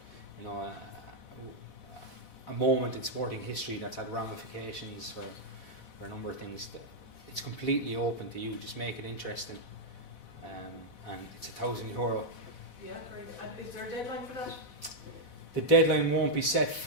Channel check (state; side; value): late; right; 4.1 ms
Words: a moment in sporting history that's had ramifications for a number of things, it's completely open to you. Just make it interesting, and it's €1,000. Yeah, great. And is there a deadline for that? The deadline won't be set